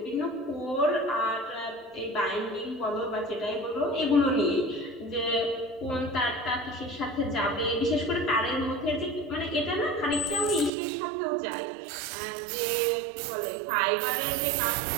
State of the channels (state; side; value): drops out; left; at 10.7 s